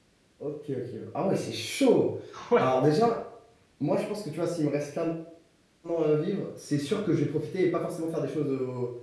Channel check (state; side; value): identical; both; correlation 1.00